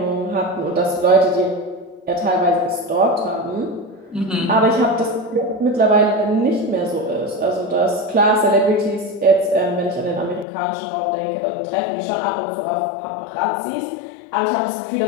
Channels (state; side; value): drops out; right; at 10.5 s